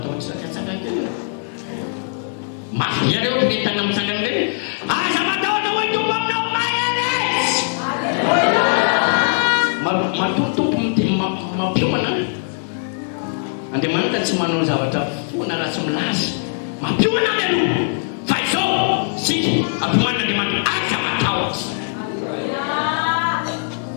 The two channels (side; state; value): right; silent; digital silence